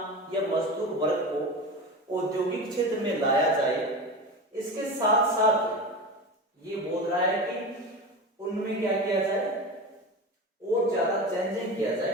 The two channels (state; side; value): normal; both; correlation 0.27